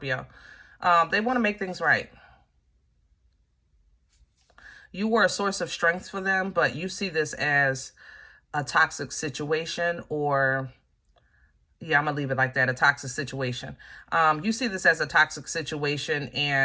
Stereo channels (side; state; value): both; identical; correlation 1.00